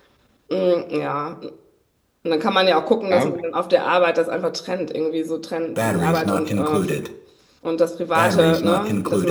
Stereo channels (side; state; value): both; identical; correlation 1.00